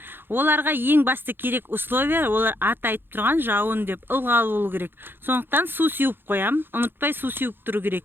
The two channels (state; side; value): late; left; 0.10 ms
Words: Оларға ең басты керек условия, олар аты айтып тұрған жауын деп ылғал болу керек. Сондықтан су сеуіп қоям, ұмытпай су сеуіп тұру